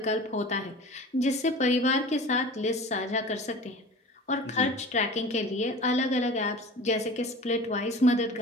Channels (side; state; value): both; normal; correlation 0.39